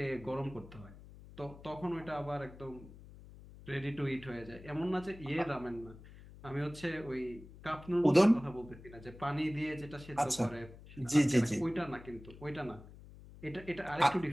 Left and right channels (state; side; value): noise; left; hum, 18 dB below the sound